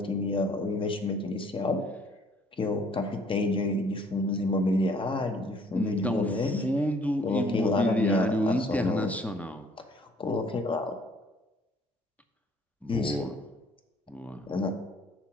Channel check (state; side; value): normal; both; correlation 0.59